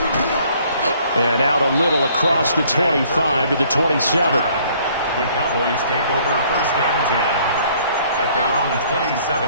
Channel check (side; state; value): both; inverted; correlation -0.60